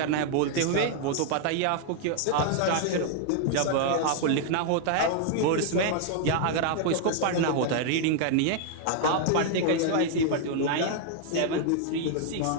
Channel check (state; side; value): different; both; correlation 0.00